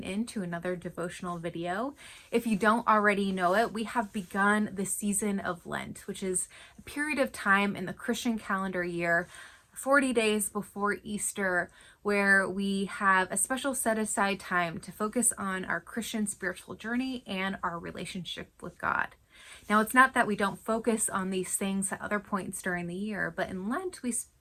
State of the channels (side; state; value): both; identical; correlation 1.00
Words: in to another devotional video. If you don't already know it, we have begun the season of Lent, which is a period of time in the Christian calendar year, 40 days before Easter, where we have a special set aside time to focus on our Christian spiritual journey and our relationship with God. Now, it's not that we don't focus on these things at other points during the year, but in Lent, we